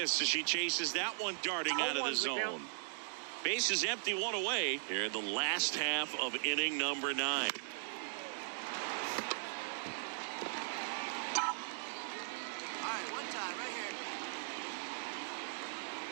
as she chases that one darting out of the zone. Base is empty, 1 away here in the last half of inning number 9. All right, one time right here.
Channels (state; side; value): silent; left; digital silence